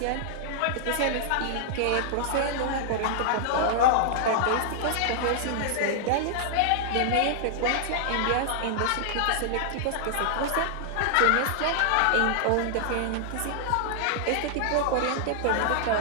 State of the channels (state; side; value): different; both; correlation -0.01